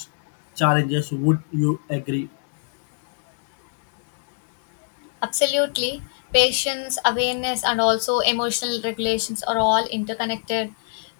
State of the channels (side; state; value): right; silent; digital silence